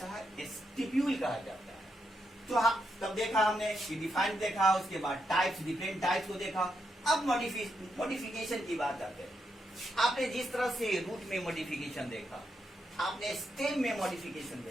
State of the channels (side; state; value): both; normal; correlation 0.82